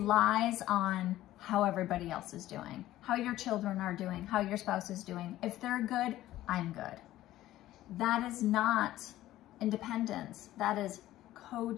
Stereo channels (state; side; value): quieter; right; 14.7 dB